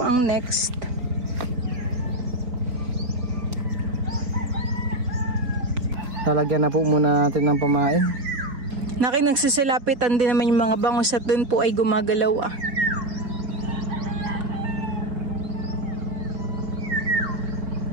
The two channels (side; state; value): left; late; 4.1 ms